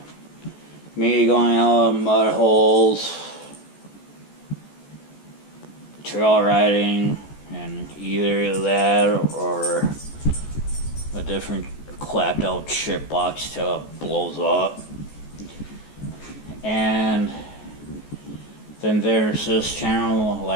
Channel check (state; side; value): late; right; 14 ms